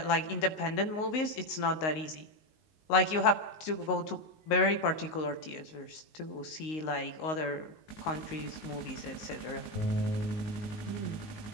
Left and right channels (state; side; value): late; right; 19 ms